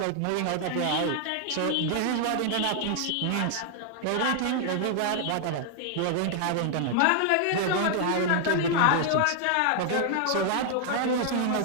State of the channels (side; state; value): both; different; correlation 0.00